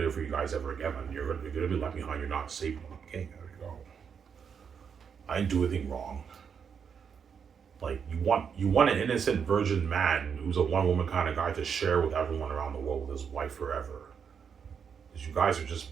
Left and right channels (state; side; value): quieter; left; 6.9 dB